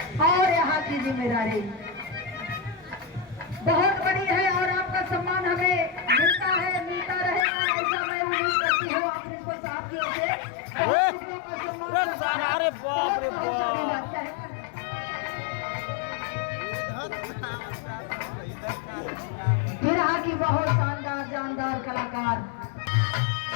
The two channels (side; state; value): right; drops out; at 7.5 s